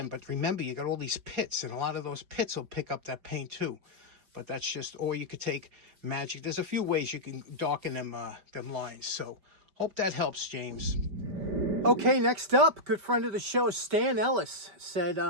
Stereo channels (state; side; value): late; left; 5.1 ms